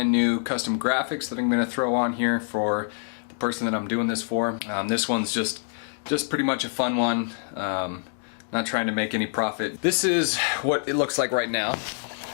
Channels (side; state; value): right; silent; 61 dB below the other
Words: new custom graphics that I'm going to throw on here for the person that I'm doing this for. This one's just pretty much a fun one. Not trying to make any profit. This is what it looks like right now.